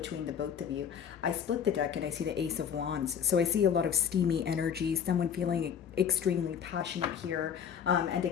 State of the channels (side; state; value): right; quieter; 8.0 dB